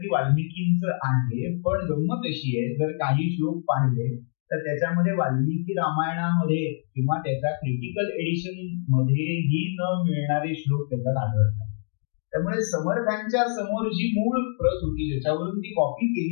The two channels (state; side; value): silent; right; digital silence